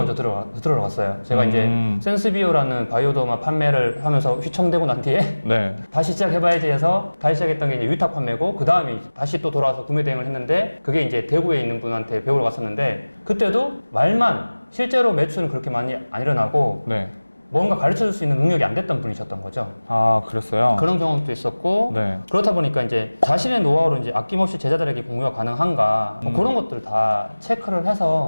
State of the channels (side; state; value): both; inverted; correlation -1.00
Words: 들어갔어요. 제가 이제 센스비오라는 바이오더마 판매를 하면서 휘청대고 난 뒤에 네. 다시 시작해봐야지 해서 다시 시작했던 게 이제 위탁 판매고 그 다음에 다시 또 돌아와서 구매 대행을 했는데 그게 이제 대구에 있는 분한테 배우러 갔었는데 그때도 말만 실제로 매출은 그렇게 많이 안 일어나고 네. 뭔가 가르쳐 줄 수 있는 능력이 안 됐던 분이셨던 거죠. 그랬어요? 그런 경험도 있었고 네. 그렇다 보니까 이제 자신의 노하우를 이제 아낌없이 제자들에게 공유가 가능한가 뭐 그런 것들 다 체크를